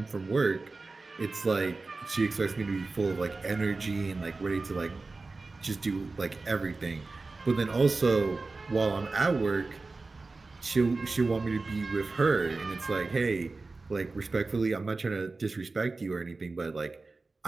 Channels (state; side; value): quieter; left; 3.7 dB